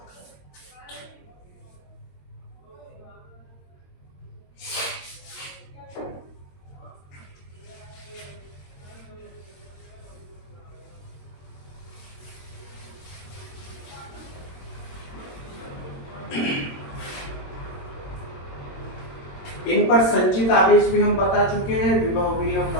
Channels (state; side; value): late; right; 22 ms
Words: इन पर संचित आवेश भी हम बता चुके हैं, विभव भी हम